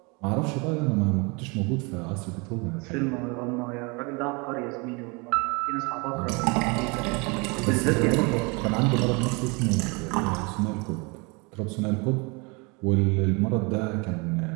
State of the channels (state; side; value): quieter; left; 29.3 dB